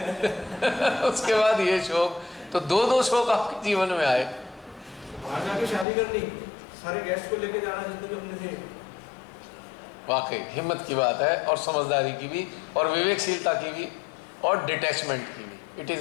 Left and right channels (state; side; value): drops out; right; at 5.9 s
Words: बाद ये शोक, तो दो शोक आपके जीवन में आए। बाहर जाके शादी करनी, सारे गेस्ट को लेके जाना जितने भी अपने थे। वाकई हिम्मत की बात है, और समझदारी की भी, और विवेकशीलता की भी, और डिटैचमेंट की भी। It